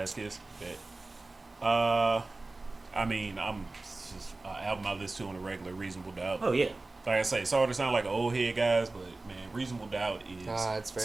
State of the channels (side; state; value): left; quieter; 3.2 dB